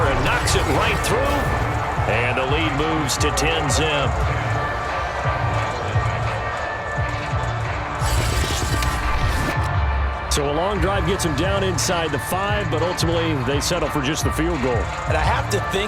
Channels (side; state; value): both; identical; correlation 1.00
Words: knocks it right through. And the lead moves to 10-zip. So a long drive gets them down inside the 5, but ultimately they settle for just the field goal. And I have to